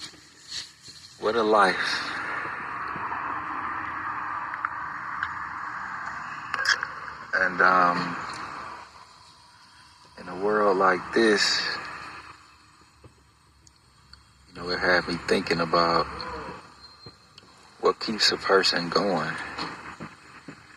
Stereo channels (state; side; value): identical; both; correlation 1.00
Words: What a life. And in a world like this, it had me thinking about what keeps a person going,